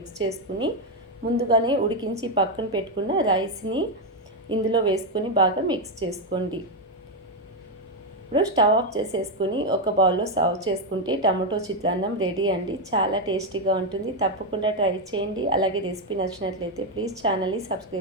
చేసుకుని ముందుగానే ఉడికించి పక్కన పెట్టుకున్న రైస్ని ఇందులో వేసుకొని బాగా మిక్స్ చేసుకోండి. ఇప్పుడు స్టవ్ ఆఫ్ చేసేసుకుని ఒక బౌల్లో సర్వ్ చేసుకుంటే టమాటో చిత్రాన్నం రెడీ అండి. చాలా టేస్టీగా ఉంటుంది. తప్పకుండా ట్రై చేయండి. అలాగే రెసిపీ నచ్చినట్లయితే ప్లీజ్ ఛానల్ని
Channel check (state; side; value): normal; both; correlation 0.05